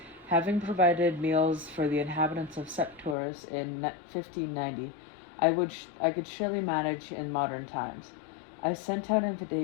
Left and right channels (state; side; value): drops out; right; at 3.2 s